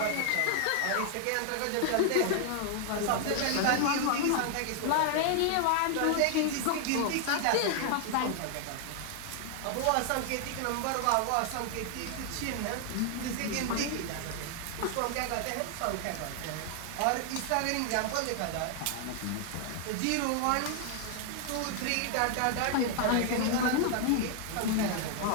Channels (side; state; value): both; different; correlation 0.00